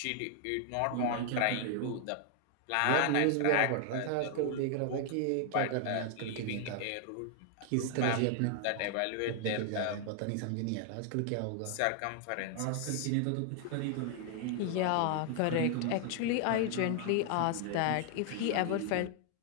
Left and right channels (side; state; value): both; different; correlation 0.00